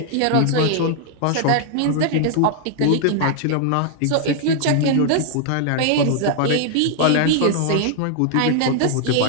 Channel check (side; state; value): both; different; correlation 0.00